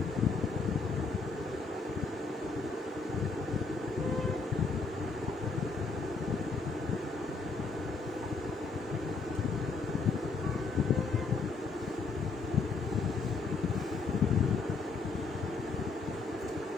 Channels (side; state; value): right; quieter; 4.3 dB